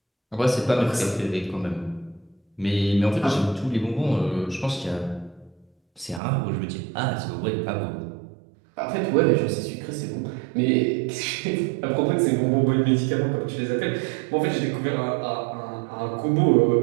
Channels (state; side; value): drops out; left; at 6.2 s